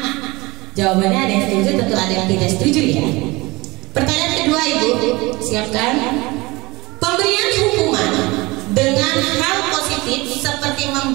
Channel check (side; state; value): left; quieter; 22.5 dB